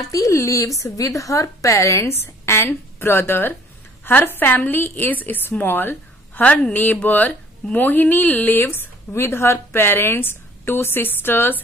lives with her parents and brother. Her family is small. Her neighbor Mohini lives with her parents, 2 sisters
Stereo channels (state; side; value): normal; both; correlation 0.56